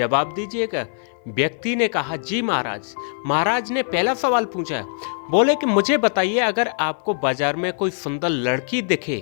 दीजिएगा। व्यक्ति ने कहा, जी महाराज। महाराज ने पहला सवाल पूछा। बोले कि मुझे बताइए, अगर आपको बाजार में कोई सुंदर लड़की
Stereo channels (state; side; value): silent; right; 55 dB below the other